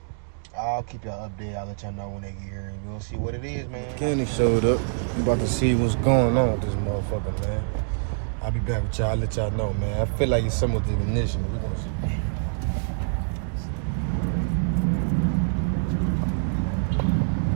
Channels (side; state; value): left; silent; digital silence